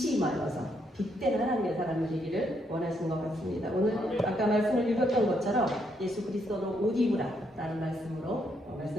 임하여서 빛된 하나님의 사람이 되기를 원하시는 것 같습니다. 오늘 아까 말씀을 읽었던 것처럼 예수 그리스도로 옷 입으라라는 말씀으로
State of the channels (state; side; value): normal; both; correlation 0.75